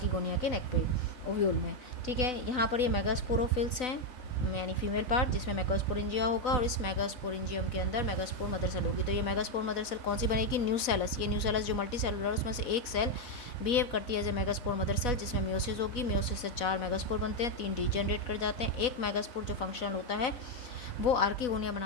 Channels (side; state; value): right; late; 4.1 ms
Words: के नेक पे, ओव्यूल में। ठीक है, यहाँ पर ये मेगास्पोरोफिल्स हैं यानी फीमेल पार्ट जिसमें मेगास्पोरेंजिया होगा, और इस मेगास्पोरेंजियम के अंदर मेगास्पोर मदर सेल होगी। तो ये मेगास्पोर मदर सेल कौन सी बनेगी, न्यूसेलस। ये न्यूसेलस जो मल्टी सेलुलर उसमें से एक सेल बिहेव करती है as a megaspore mother cell, जिसमें म्योसिस होगी। म्योसिस से 4 मेगास्पोर बनते हैं, 3 डीजेनरेट कर जाते हैं। एक मेगास्पोर जो फंक्शनल होता है वो आर्किगोनिया